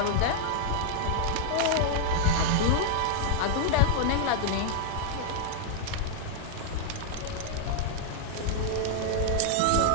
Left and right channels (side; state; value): both; different; correlation -0.01